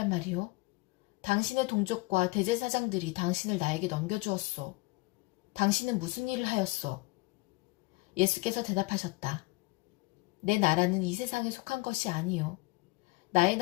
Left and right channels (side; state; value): right; quieter; 23.8 dB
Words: 말이요? 당신의 동족과 대제사장들이 당신을 나에게 넘겨주었소. 당신은 무슨 일을 하였소? 예수께서 대답하셨다. 내 나라는 이 세상에 속한 것이 아니요. 나의